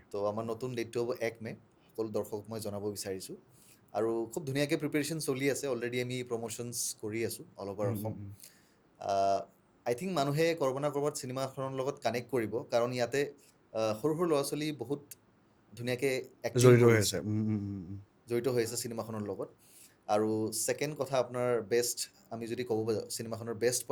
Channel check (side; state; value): both; identical; correlation 1.00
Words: তো আমাৰ নতুন ডেটটো হ'ব 1 মে সকলো দৰ্শকক মই জনাব বিচাৰিছোঁ আৰু খুব ধুনীয়াকৈ প্ৰিপেৰেশ্যন চলি আছে অলৰেডি আমি প্ৰমোশ্যনছ কৰি আছোঁ অল অভাৰ অসম আই থিংক মানুহে ক'ৰবাত না ক'ৰবাত চিনেমাখনৰ লগত কানেক্ট কৰিব কাৰণ ইয়াতে সৰু সৰু ল'ৰা ছোৱালী বহুত ধুনীয়াকৈ এক্টিং কৰিছে জড়িত হৈ আছে চিনেমাখনৰ লগত আৰু ছেকেণ্ড কথা আপোনাৰ বেষ্ট আমি যদি ক'ব যাওঁ চিনেমাখনৰ বেষ্ট